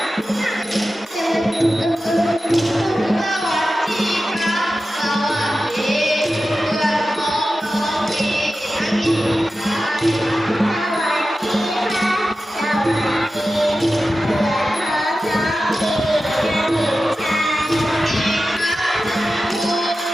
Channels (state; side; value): normal; both; correlation 0.93